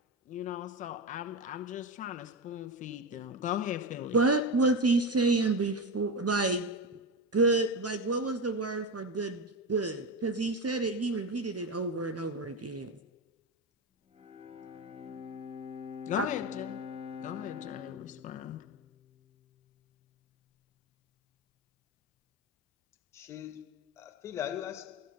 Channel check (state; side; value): normal; both; correlation 0.18